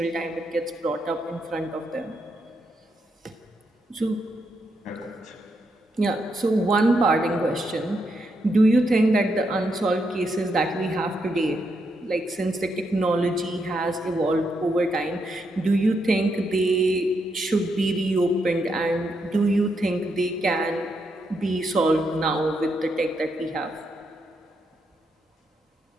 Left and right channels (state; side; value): normal; both; correlation 0.80